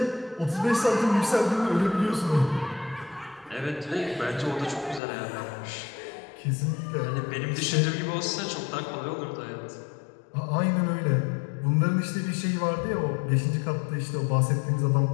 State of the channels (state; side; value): drops out; right; at 5.0 s